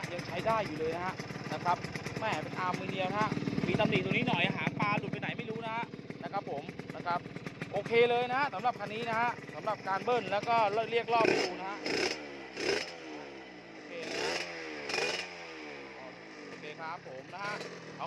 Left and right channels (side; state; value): both; identical; correlation 1.00